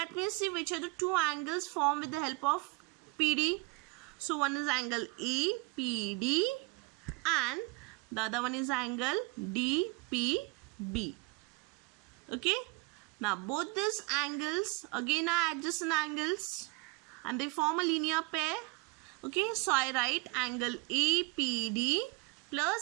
me see which are the two angles formed with the help of PD. So one is angle APD and the other one is angle DPB. Okay, now both these angles again are adjacent angles and they form a linear pair. Okay, so I write angle APD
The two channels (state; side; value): quieter; left; 26.7 dB